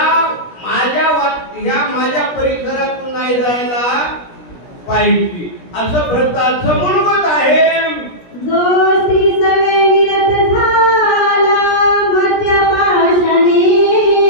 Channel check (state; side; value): late; right; 17 ms